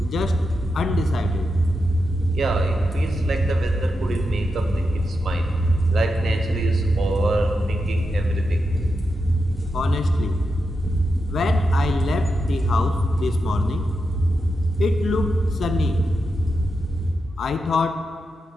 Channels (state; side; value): normal; both; correlation 0.87